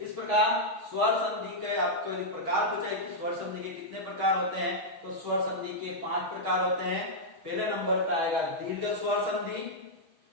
प्रकार स्वर संधि के आपको यदि प्रकार पूछा है कि स्वर संधि के कितने प्रकार होते हैं, तो स्वर संधि के 5 प्रकार होते हैं। पहले नंबर पे आएगा दीर्घ स्वर संधि,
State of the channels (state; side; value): late; left; 6.3 ms